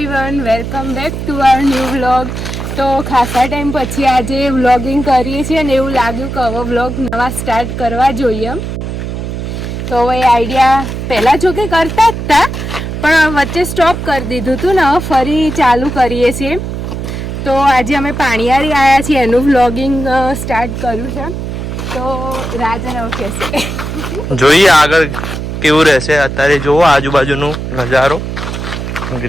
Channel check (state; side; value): noise; right; hum, 5 dB below the sound